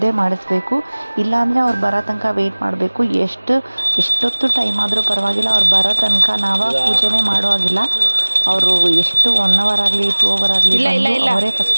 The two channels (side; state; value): both; inverted; correlation -1.00